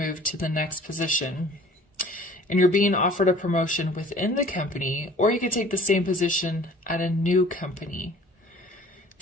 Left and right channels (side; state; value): both; normal; correlation 0.49